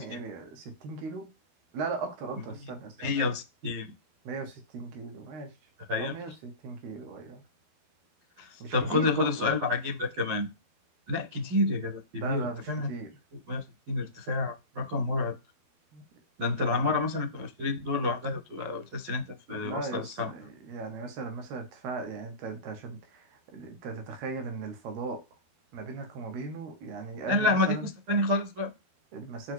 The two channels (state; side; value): late; left; 11 ms